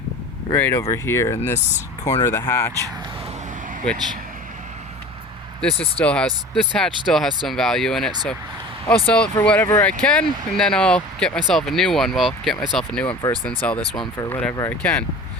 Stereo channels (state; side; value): normal; both; correlation 0.39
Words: right over here in this corner of the hatch, which this hatch still has some value in it, so I'll sell it for whatever I can, and then I'll get myself a new one. Well, get myself a new one first, then sell this one for whatever I can.